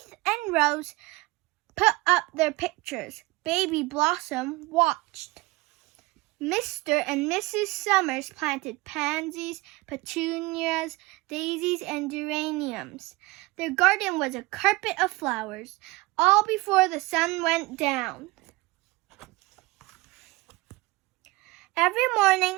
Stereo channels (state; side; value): quieter; left; 22.0 dB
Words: and Rose put up their pictures. Baby Blossom watched. Mr. and Mrs. Summers planted pansies, petunias, daisies, and geraniums. Their garden was a carpet of flowers, all before the sun went down. Every